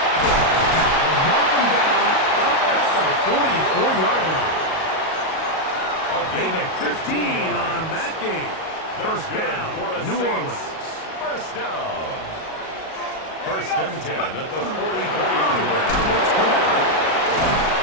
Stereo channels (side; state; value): right; late; 38 ms